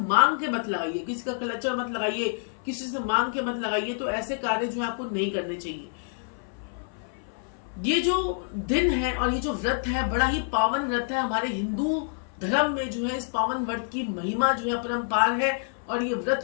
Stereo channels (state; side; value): silent; right; 59 dB below the other